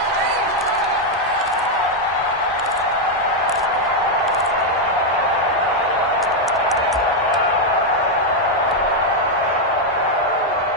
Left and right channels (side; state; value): both; normal; correlation 0.01